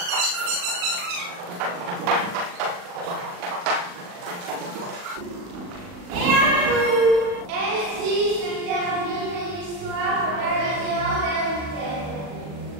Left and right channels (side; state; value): left; late; 40 ms